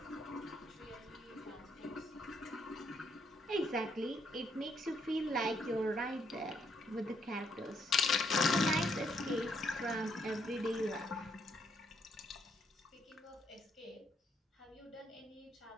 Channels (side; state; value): both; normal; correlation 0.73